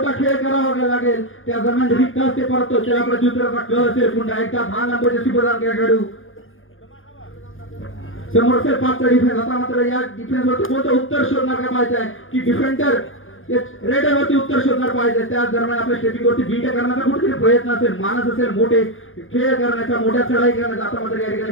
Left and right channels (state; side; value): late; right; 0.59 ms